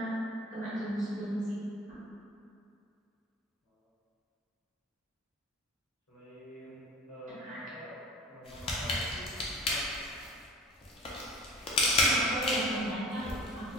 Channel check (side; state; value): both; normal; correlation 0.41